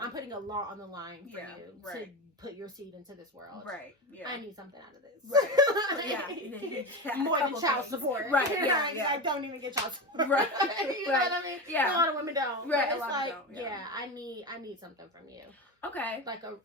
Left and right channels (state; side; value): normal; both; correlation 0.22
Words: putting a lot on the line for you to put your seed into this world. Right. Yeah, I need something out of this. Right. More than child support. Right. Yeah. I don't even get child support. Right. You know what I mean? Yeah. A lot of women don't. Right. It's like, I need something from you. Okay. Like a